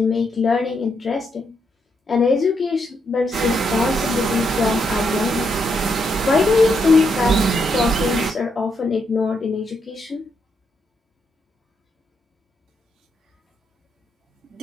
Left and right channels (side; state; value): both; normal; correlation 0.79